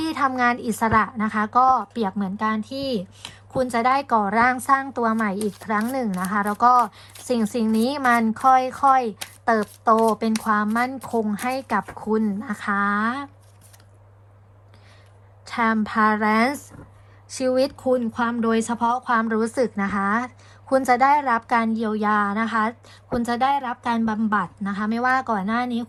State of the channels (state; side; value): identical; both; correlation 1.00